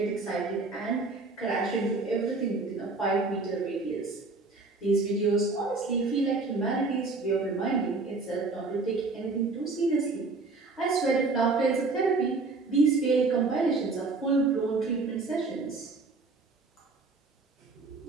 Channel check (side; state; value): left; quieter; 3.7 dB